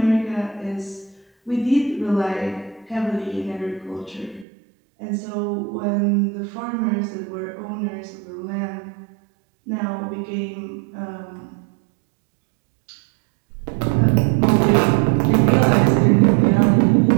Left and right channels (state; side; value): drops out; left; at 4.5 s